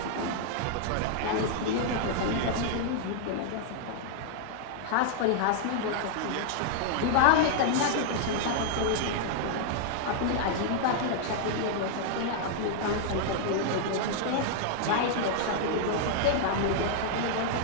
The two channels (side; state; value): both; different; correlation -0.01